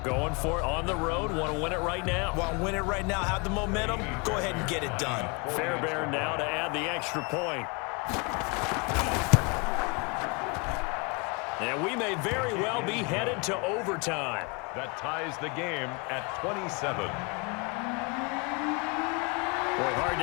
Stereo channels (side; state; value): right; quieter; 30.8 dB